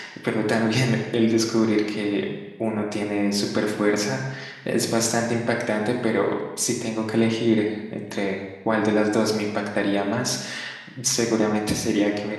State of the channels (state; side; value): identical; both; correlation 1.00